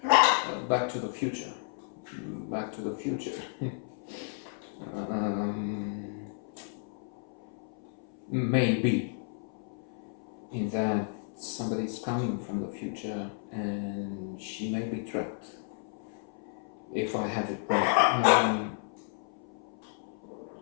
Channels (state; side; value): silent; right; 56 dB below the other